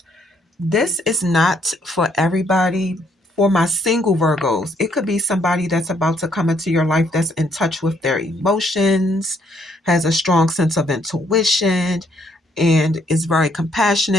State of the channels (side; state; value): both; normal; correlation 0.69